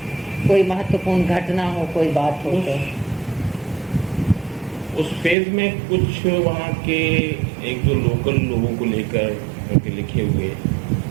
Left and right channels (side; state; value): left; drops out; at 5.4 s